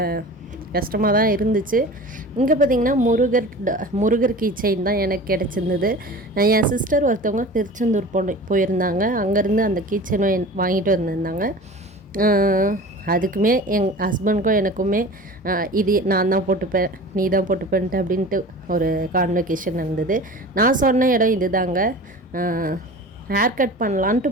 கஷ்டமாக தான் இருந்துச்சு. இங்கே பார்த்திங்கன்னா முருகர் கீ செயின் தான் எனக்கு கிடச்சிருந்தது. என் சிஸ்டர் ஒருத்தவங்க திருச்செந்தூர் போயிருந்தாங்க. அங்கேருந்து அந்த கீ செயின் வாங்கிட்டு வந்திருந்தாங்க. அதுக்குமே எங்கள் ஹஸ்பண்டுக்கும் எனக்குமே இது நான் தான் போட்டுப்பேன், நீ தான் போட்டுப்பேன்ட்டு அப்படின்ட்டு ஒரு கான்வெகேஷன் இருந்தது. நான் சொன்ன இடம் இது தாங்க. ஹேர் கட் பண்ணலான்ட்டு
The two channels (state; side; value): normal; both; correlation 0.38